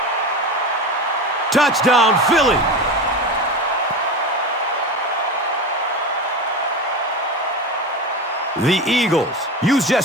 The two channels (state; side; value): normal; both; correlation 0.24